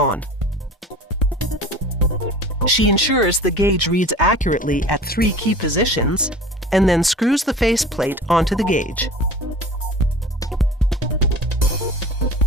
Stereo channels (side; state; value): both; normal; correlation 0.41